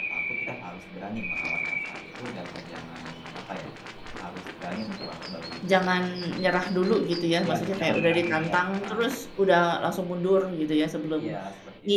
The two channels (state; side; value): identical; both; correlation 1.00